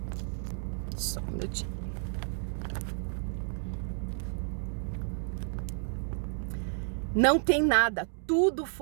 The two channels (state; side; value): silent; left; 57 dB below the other